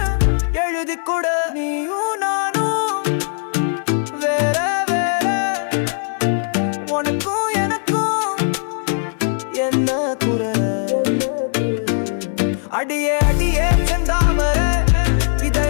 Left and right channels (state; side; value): silent; right; 62 dB below the other